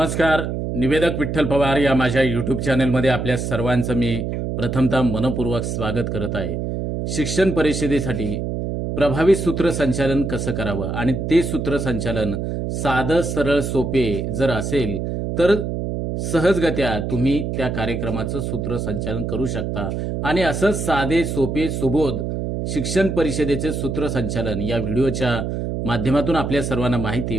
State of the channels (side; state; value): right; noise; hum, 3 dB below the sound